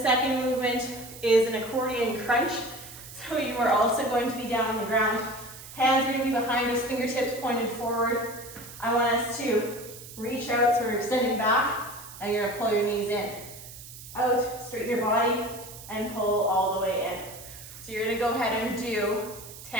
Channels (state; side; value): noise; right; hiss, 15 dB below the sound